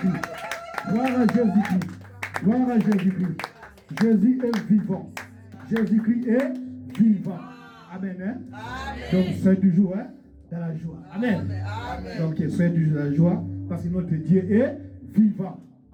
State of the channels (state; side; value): identical; both; correlation 1.00